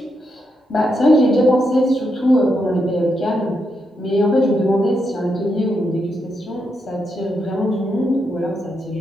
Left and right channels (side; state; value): both; normal; correlation 0.82